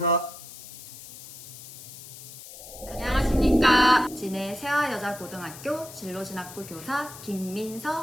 안녕하십니까. 진해 세화여자고등학교 진로진학부 교사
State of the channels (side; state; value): left; noise; hiss, 15 dB below the sound